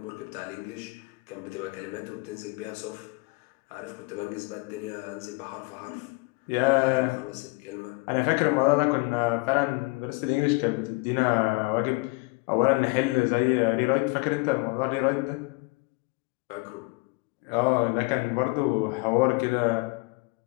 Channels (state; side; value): quieter; right; 26.6 dB